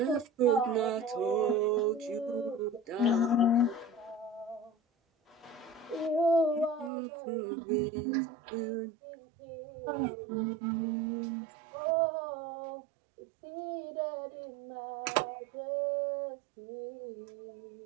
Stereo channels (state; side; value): drops out; left; at 6.9 s